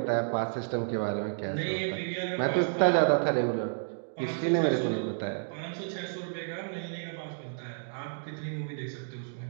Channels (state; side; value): silent; left; digital silence